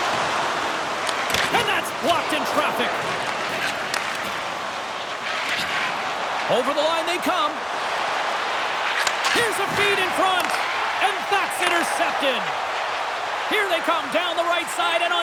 And that's blocked in traffic. Over the line they come. Here's a feed in front. And that's intercepted. Here they come down the right side and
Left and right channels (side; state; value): both; identical; correlation 1.00